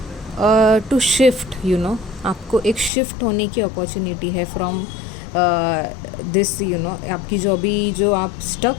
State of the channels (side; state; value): right; drops out; at 2.9 s